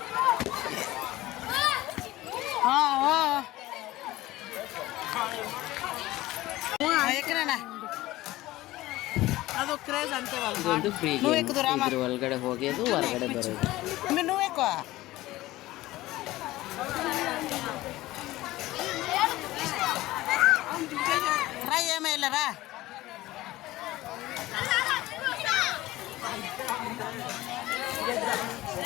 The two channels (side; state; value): right; quieter; 17.4 dB